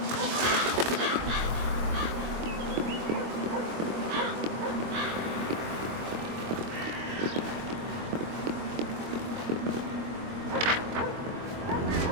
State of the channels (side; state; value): left; late; 24 ms